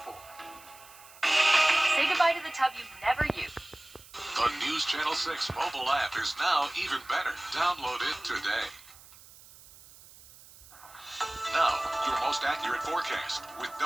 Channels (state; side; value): noise; right; hiss, 21 dB below the sound